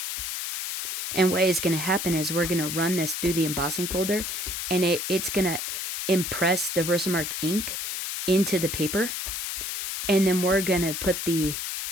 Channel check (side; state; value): left; noise; hiss, 4 dB below the sound